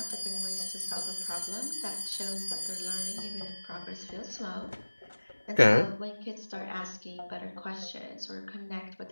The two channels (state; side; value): inverted; both; correlation -1.00